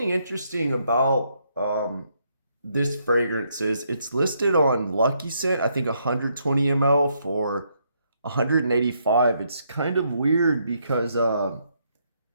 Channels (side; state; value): both; inverted; correlation -0.75